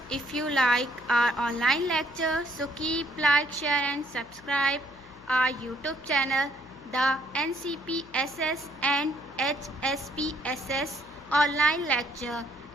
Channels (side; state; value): left; noise; hum, 25 dB below the sound